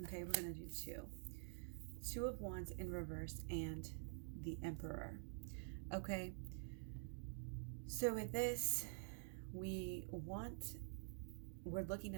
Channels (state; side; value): silent; left; digital silence